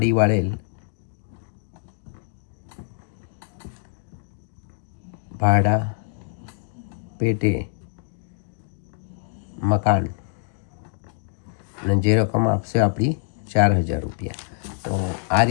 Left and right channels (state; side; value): silent; right; digital silence